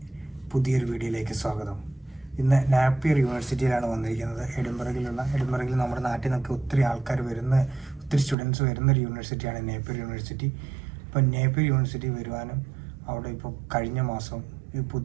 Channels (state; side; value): drops out; left; at 8.3 s